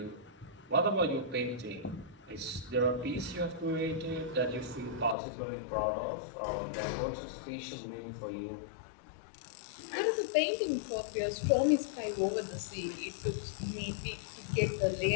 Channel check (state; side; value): drops out; right; at 5.2 s